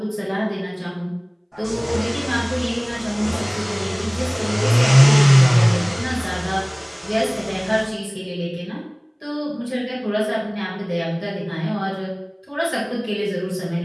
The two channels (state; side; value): identical; both; correlation 1.00